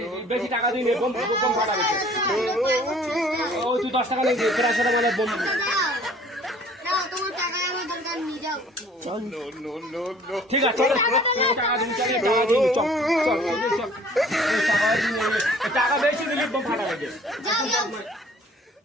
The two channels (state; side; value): normal; both; correlation 0.53